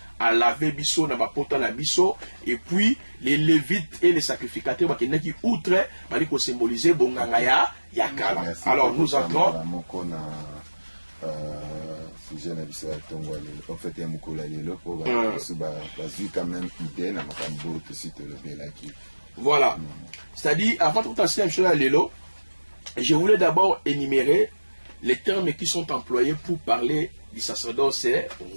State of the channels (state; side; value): inverted; both; correlation -1.00